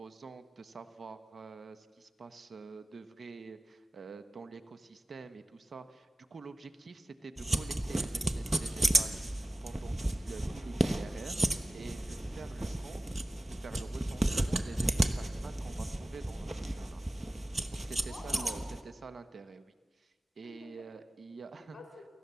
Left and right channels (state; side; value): normal; both; correlation 0.95